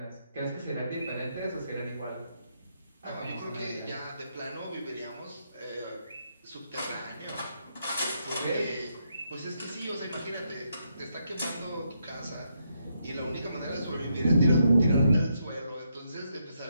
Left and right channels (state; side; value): inverted; both; correlation -0.79